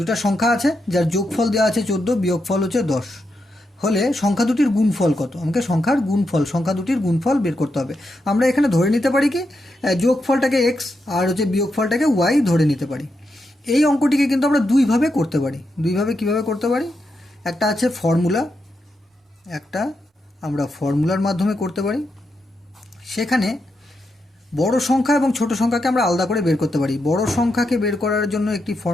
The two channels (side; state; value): both; normal; correlation 0.84